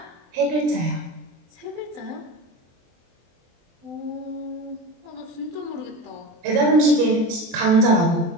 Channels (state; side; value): late; left; 23 ms